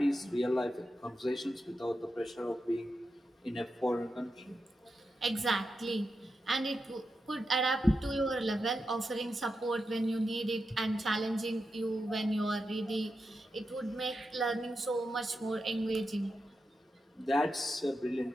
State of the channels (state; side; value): normal; both; correlation 0.88